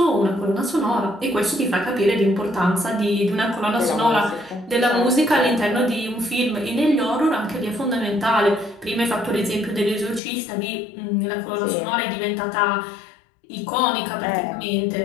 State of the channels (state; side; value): drops out; right; at 10.2 s